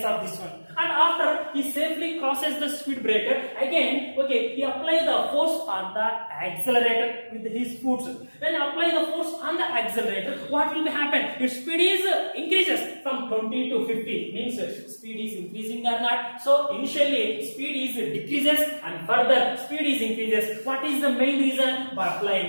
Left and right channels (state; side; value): inverted; both; correlation -1.00